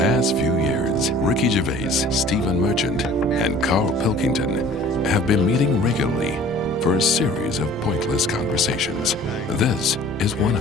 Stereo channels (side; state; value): both; normal; correlation 0.48